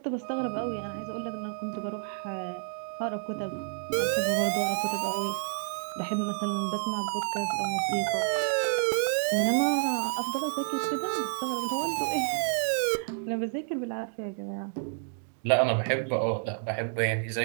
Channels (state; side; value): silent; left; 58 dB below the other